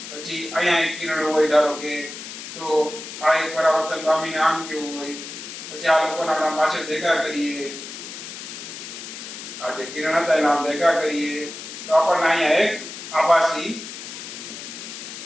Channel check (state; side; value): noise; left; hiss, 10 dB below the sound